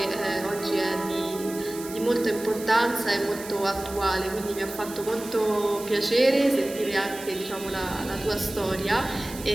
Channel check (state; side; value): noise; right; hiss, 13 dB below the sound